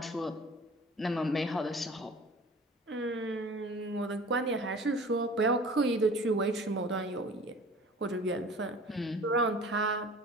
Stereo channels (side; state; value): both; normal; correlation 0.43